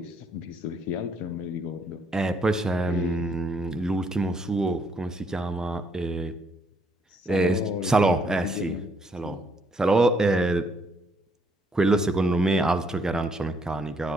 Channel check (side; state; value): both; normal; correlation 0.70